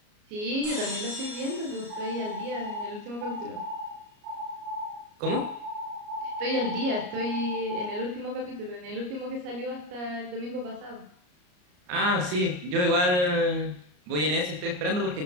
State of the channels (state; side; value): late; left; 33 ms